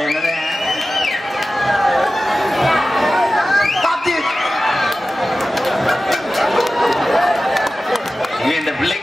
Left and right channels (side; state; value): both; normal; correlation 0.95